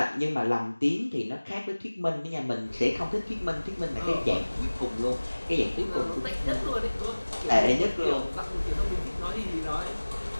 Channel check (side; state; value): both; inverted; correlation -1.00